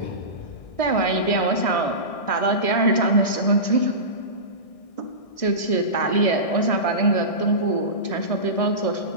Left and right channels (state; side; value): late; right; 1.6 ms